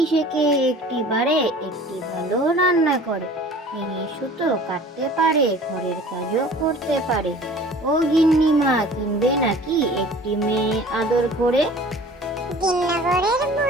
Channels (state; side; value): normal; both; correlation 0.46